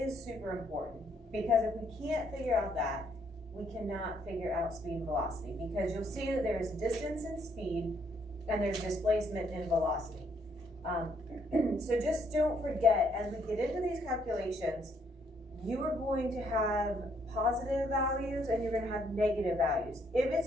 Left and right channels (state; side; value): normal; both; correlation 0.70